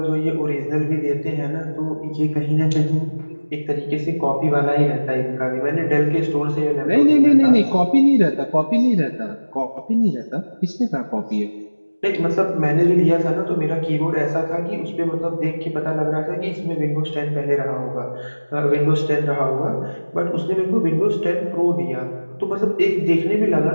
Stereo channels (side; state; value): both; inverted; correlation -1.00